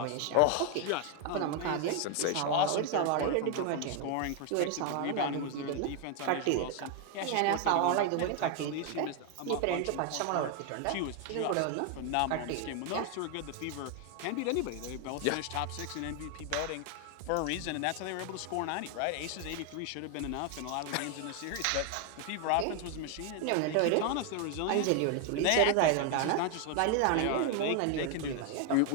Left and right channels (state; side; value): different; both; correlation 0.00